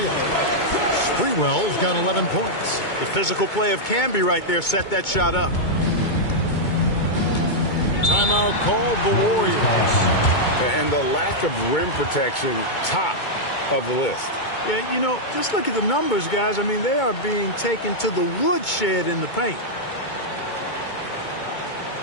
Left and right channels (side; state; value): right; late; 2.2 ms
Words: Sprewell's got 11 points. The physical play of Camby right there set that shot up. Timeout called the Warriors. And the lack of rim protection, top of the list. Yeah, you know, just look at the numbers, guys. I mean, they are being taken to the woodshed in the paint.